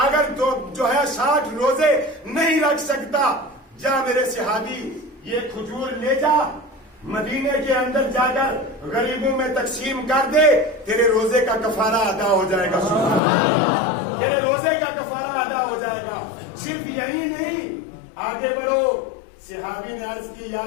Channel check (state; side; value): drops out; right; at 13.2 s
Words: اگر جو ہے 60 روزے نہیں رکھ سکتا، جا میرے صحابی یہ کھجور لے جا، مدینے کے اندر جا کر غریبوں میں تقسیم کر دے، تیرے روزے کا کفارہ ادا ہو جائے گا، تیرے روزے کا کفارہ ادا ہو جائے گا۔ صرف یہی نہیں، آگے بڑھو۔ صحابی نے عرض کی یا